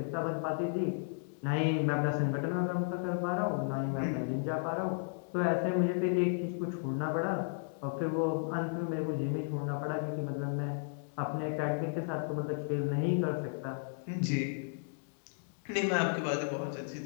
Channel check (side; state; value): right; silent; digital silence